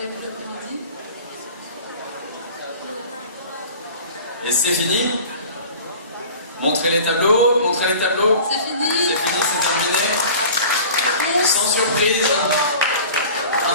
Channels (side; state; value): both; inverted; correlation -0.41